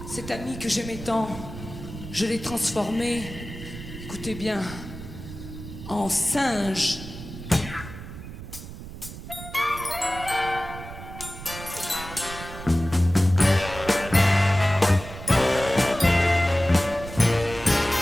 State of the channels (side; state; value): right; noise; rumble, 12 dB below the sound